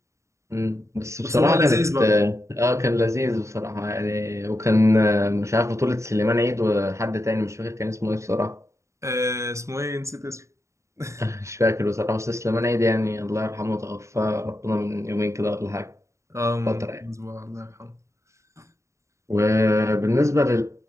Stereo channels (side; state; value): left; late; 0.14 ms